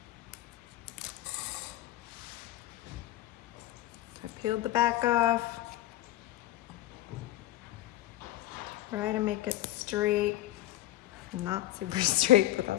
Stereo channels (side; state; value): right; quieter; 14.8 dB